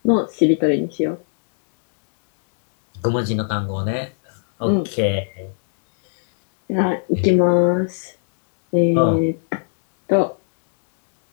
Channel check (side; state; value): right; silent; 67 dB below the other